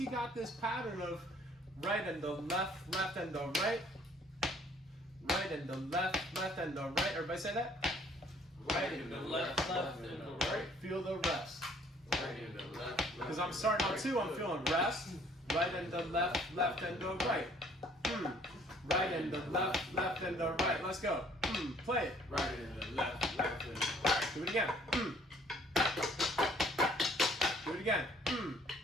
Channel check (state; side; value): normal; both; correlation 0.59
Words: got this pattern of right and the left, left and the right, right and the left, left and the right. Everybody say that? Right and the left, left and the right. Feel the rest. Right and the left, left. Because I'm starting on 2, I'm feeling rest. Right and the left, left and the right. Right and the left, left and the right. Let's go. Play it. Right and the left, left and the right. Do it again. Do it again.